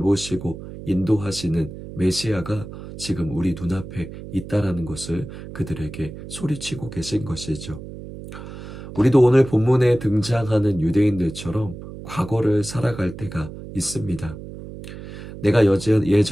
인도하시는 메시아가 지금 우리 눈앞에 있다는 것을 그들에게 소리치고 계신 것이죠. 우리도 오늘 본문에 등장하는 유대인들처럼 과거를 살아갈 때가 있습니다. 내가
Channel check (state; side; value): noise; right; hum, 12 dB below the sound